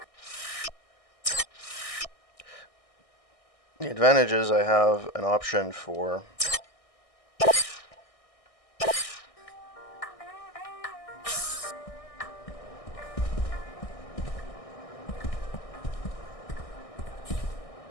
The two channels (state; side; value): late; right; 1.6 ms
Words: The advantage is I have an option for